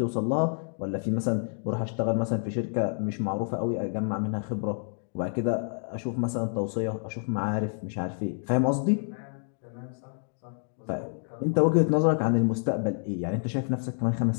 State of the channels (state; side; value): silent; right; 59 dB below the other